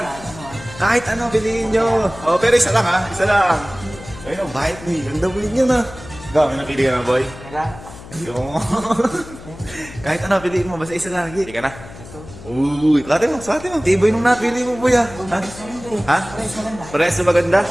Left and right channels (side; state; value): left; noise; hum, 16 dB below the sound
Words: Kahit ano, bilihin nyo. O, pero isa lang ha. Isa lang. Ayun o, bahit mo. Ganda mo yun na. Ikaw, may napili ka na, boy? Yung... Kahit ano, piliin mo. Basta isa lang. Hindi ka na. Uy, suwate mo. Tibay nung napili mo, boy ha. Ha? Pares na maganda?